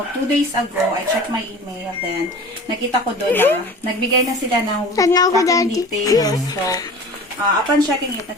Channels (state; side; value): normal; both; correlation 0.39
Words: 2 days ago, I checked my email. Then, nakita ko doon na nagbigay na sila ng tracking details. So, upon checking it,